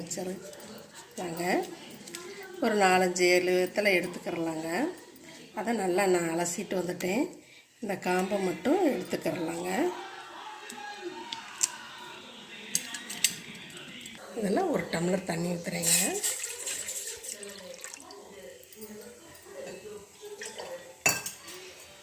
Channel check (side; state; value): both; identical; correlation 1.00